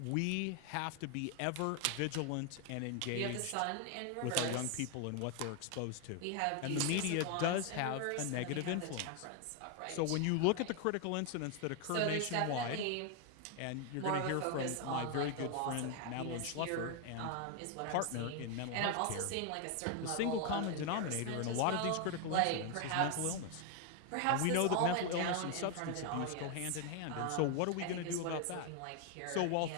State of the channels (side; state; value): both; different; correlation 0.01